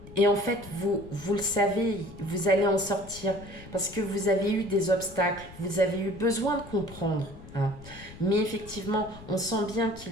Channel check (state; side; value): noise; left; rumble, 17 dB below the sound